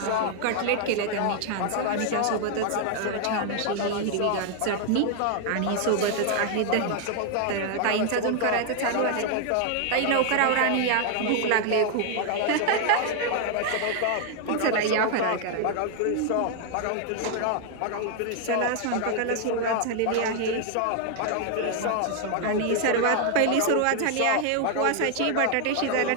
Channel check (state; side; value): different; both; correlation 0.00